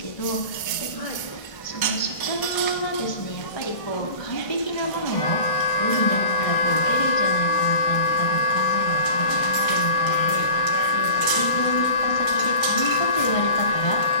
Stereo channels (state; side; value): late; right; 1.6 ms